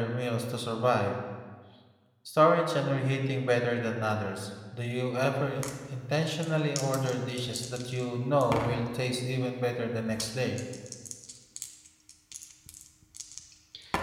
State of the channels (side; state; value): both; identical; correlation 1.00